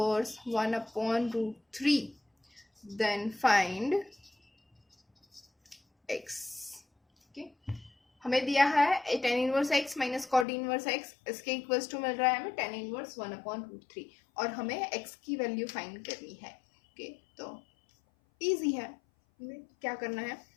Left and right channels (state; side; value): drops out; right; at 10.5 s